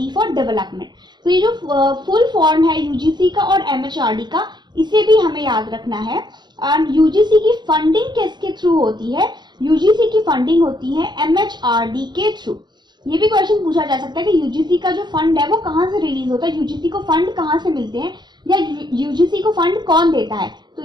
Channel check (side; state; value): left; late; 0.21 ms